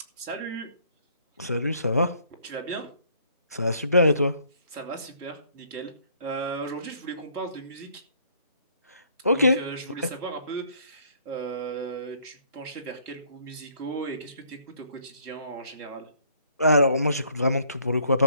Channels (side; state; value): both; inverted; correlation -0.63